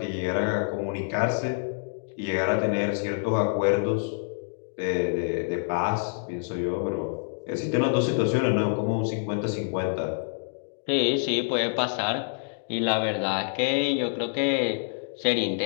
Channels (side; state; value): right; silent; digital silence